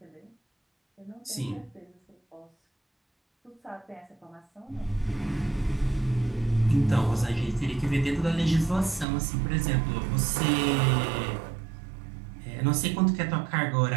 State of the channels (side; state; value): left; drops out; at 9.1 s